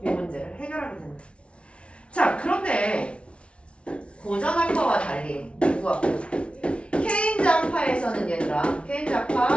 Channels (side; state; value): right; late; 0.060 ms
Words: 이 문제를 해결하게 된다. 자, 그런데 고전학파와 달리 누구학파? 케인즈학파에서는 얘들아,